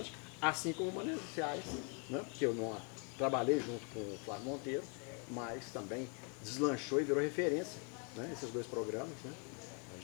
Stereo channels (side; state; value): right; quieter; 37.4 dB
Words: assim como o Mananciais, né? Que eu não trabalhei junto com o Flávio Monteiro, mas também deslanchou e virou referência, né? Esses 2 programas, né? A